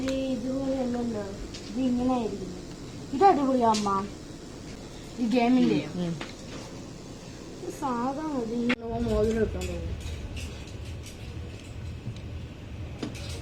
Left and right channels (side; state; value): both; identical; correlation 1.00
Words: ഇതുപോലെ അല്ലല്ലോ, ഇത് ഇങ്ങനെ ആയിരിക്കും. ഇത് അടിപൊളിയാ അമ്മ. ഈ ഗെയിമിന്റെ സാധാ മതി. മോതിരം ഇട്ടാൻ തോന്നുന്നു.